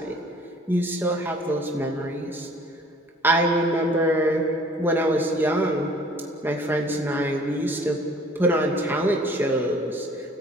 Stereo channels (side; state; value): both; normal; correlation 0.53